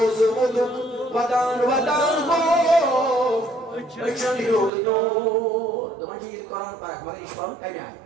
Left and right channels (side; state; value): left; drops out; at 4.7 s